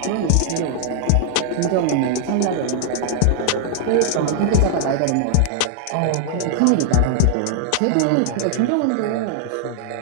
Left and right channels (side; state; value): both; different; correlation 0.00